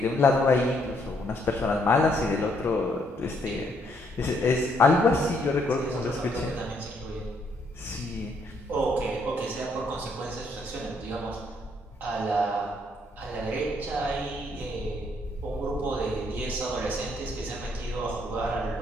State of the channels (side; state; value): both; normal; correlation 0.70